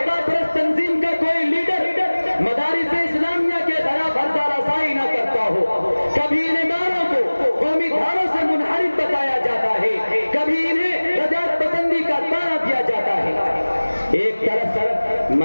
پرست تنظیم کا کوئی لیڈر مدارس اسلامیہ کے خلاف ہرزہ رسائی نہ کرتا ہو. کبھی ان اداروں کو قومی دھاروں سے منحرف بتایا جاتا ہے، کبھی انہیں رجعت پسندی کا تانا دیا جاتا ہے. ایک طرف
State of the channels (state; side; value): inverted; both; correlation -1.00